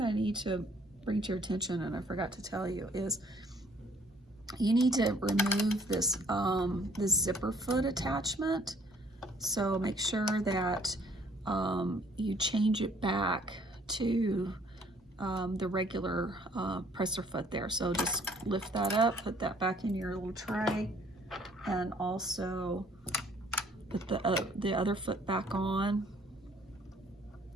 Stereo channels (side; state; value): both; normal; correlation 0.60